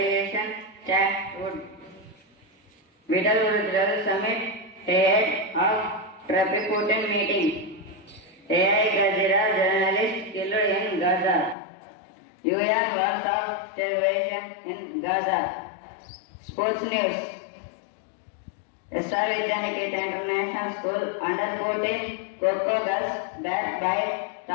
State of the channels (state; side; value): drops out; right; at 11.6 s